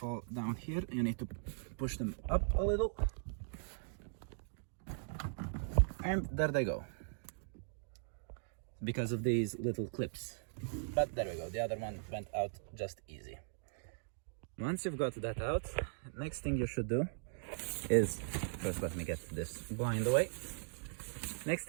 down here. You need to push them up a little, and there they go, because of these little clips. But there we go, the other one went out just easy. Once you've got that out, next thing you should do is, first let me get this blind away. Next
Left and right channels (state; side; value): silent; left; digital silence